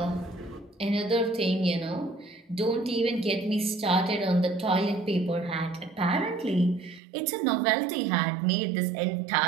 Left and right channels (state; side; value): drops out; left; at 7.0 s